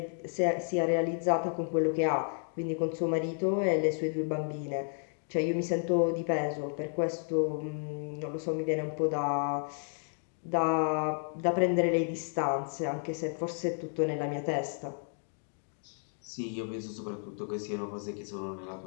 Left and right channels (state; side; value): silent; right; 56 dB below the other